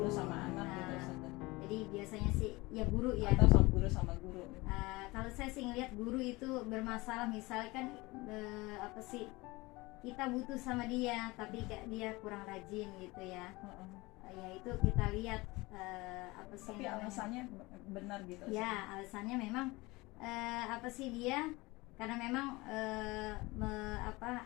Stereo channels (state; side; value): quieter; right; 22.5 dB